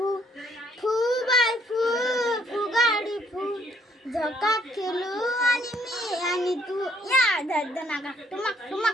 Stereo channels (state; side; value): normal; both; correlation 0.66